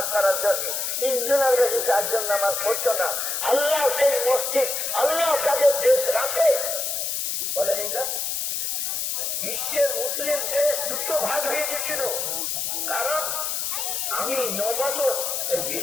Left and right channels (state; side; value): noise; left; hiss, 1 dB below the sound